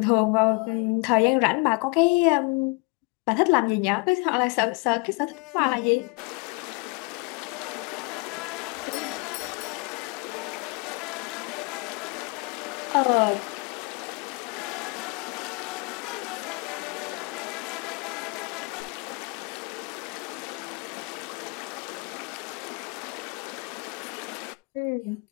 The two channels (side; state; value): right; quieter; 29.1 dB